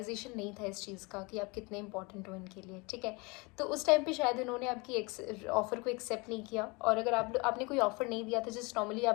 नहीं था इस चीज़ का कि आप कितने इंपॉर्टेंट हो इनके लिए। ठीक है, तो उस टाइम पे शायद इन्होंने आपकी ऑफ़र को एक्सेप्ट नहीं किया। और अगर आपने कोई ऑफ़र नहीं दिया था, जस्ट नॉर्मली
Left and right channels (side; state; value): right; quieter; 27.6 dB